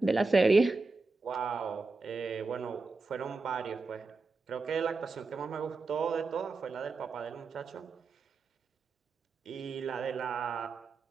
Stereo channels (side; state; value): left; quieter; 3.9 dB